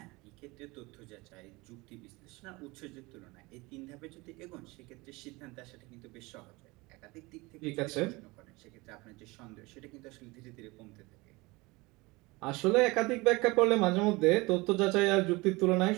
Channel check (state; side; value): quieter; left; 23.5 dB